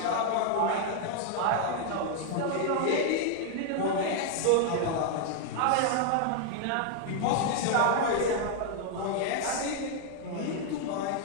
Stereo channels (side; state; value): both; different; correlation 0.00